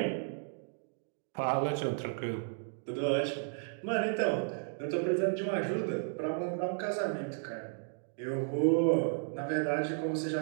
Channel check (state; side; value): silent; left; digital silence